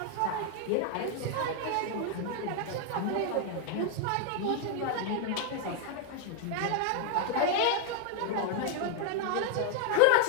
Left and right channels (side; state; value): both; different; correlation 0.00